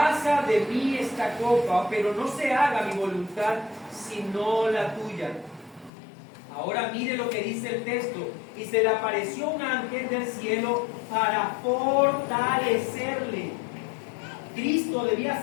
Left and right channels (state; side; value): drops out; right; at 5.9 s